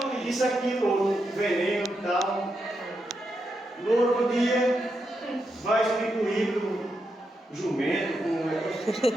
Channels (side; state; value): both; normal; correlation 0.84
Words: isso aqui, outro, veneno e tal. No outro dia vai explicar o jumento,